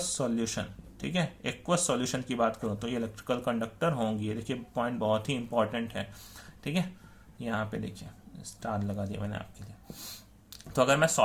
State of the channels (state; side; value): identical; both; correlation 1.00